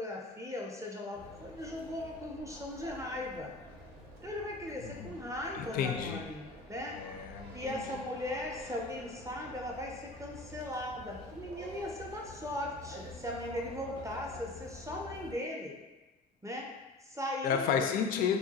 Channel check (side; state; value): right; quieter; 3.3 dB